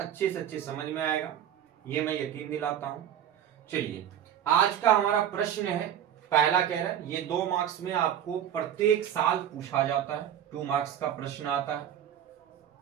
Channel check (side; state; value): left; quieter; 10.1 dB